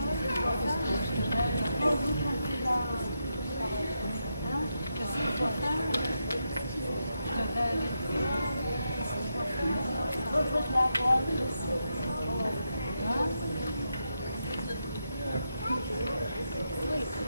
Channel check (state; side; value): inverted; both; correlation -0.84